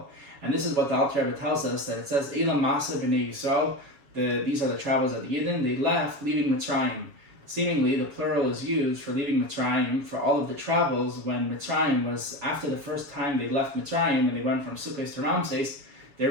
And this is what the Alter Rebbe tells us, that it says, Eila Massei B'nai Yisrael, these are the travels of the Yidden, they left leaving Mitzrayim. Seemingly, the plural is used for leaving Mitzrayim for all of the travels when Mitzrayim was, after the first time they left Mitzrayim and they went from Sukkot to Ramses, They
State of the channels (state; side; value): late; left; 7.1 ms